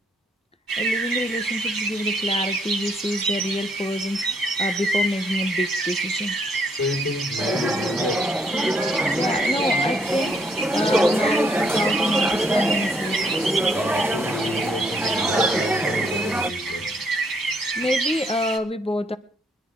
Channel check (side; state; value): both; normal; correlation 0.70